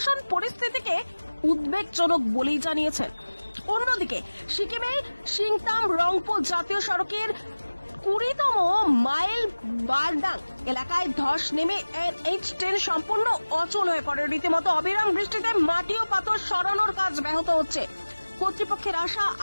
পরিস্থিতিকে উদ্বেগজনক বলেই জানিয়েছেন। অন্যদিকে সিকিমে সিংতাম রংপো জাতীয় সড়কের 20তম মাইল বারডাং এলাকায় ধস নেমে NH10 সম্পূর্ণ অচল হয়ে পড়ে। রীতিমতো অবিরাম বৃষ্টিতে মাটি ও পাথর সরানোর কাজ ব্যাহত হচ্ছে। কর্তৃপক্ষের আশা,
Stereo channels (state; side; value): inverted; both; correlation -1.00